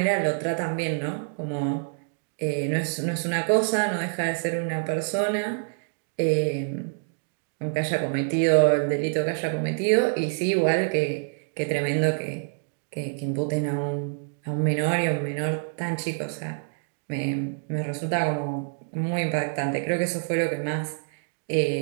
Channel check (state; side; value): silent; left; digital silence